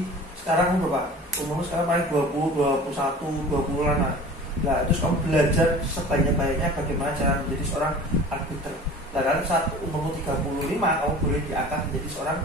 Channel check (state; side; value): normal; both; correlation 0.41